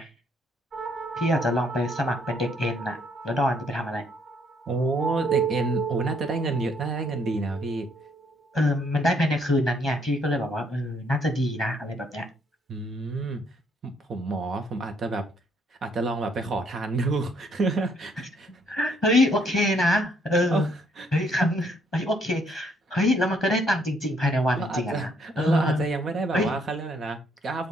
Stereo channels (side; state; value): both; normal; correlation 0.68